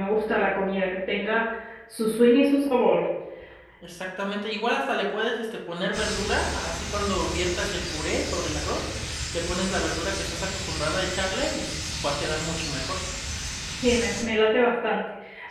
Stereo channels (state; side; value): identical; both; correlation 1.00